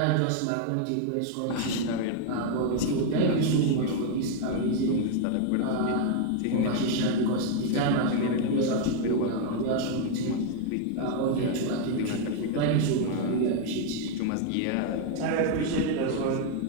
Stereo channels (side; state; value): both; different; correlation 0.00